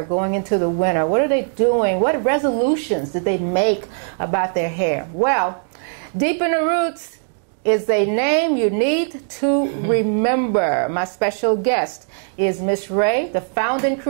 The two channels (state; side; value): silent; left; 66 dB below the other